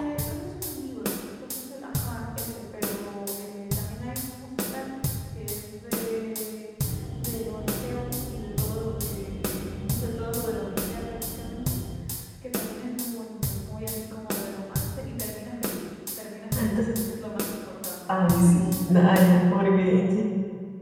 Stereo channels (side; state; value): both; identical; correlation 1.00